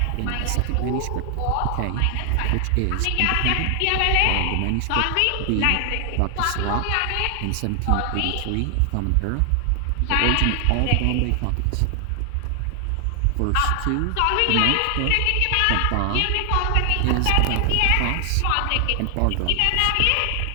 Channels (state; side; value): different; both; correlation 0.00